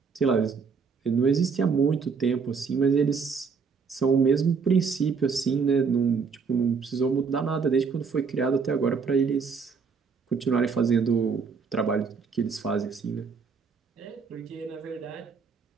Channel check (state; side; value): quieter; left; 5.5 dB